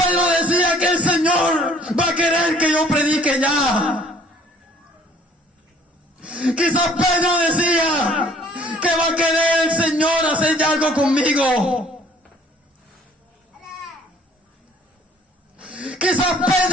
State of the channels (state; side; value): normal; both; correlation 0.56